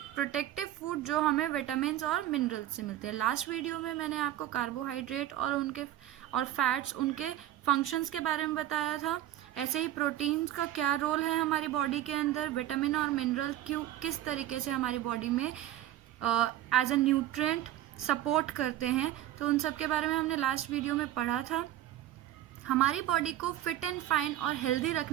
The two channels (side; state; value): left; quieter; 13.3 dB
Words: protective food, जो हमें विटामिन और मिनरल्स से मिलते हैं. लास्ट वीडियो में मैंने आपको कार्बोहाइड्रेट और फैट्स उनके फंक्शंस के बारे में बताया था. ऐसे ही प्रोटीन्स का क्या रोल है हमारी बॉडी के अंदर, विटामिन और मिनरल किस तरीके से हमारी बॉडी में एज अ न्यूट्रिएंट सपोर्ट करते हैं, तो उन सब के बारे में हमने लास्ट वीडियो में पढ़ा था. हमारी बॉडी को फिट एंड फाइन और हेल्दी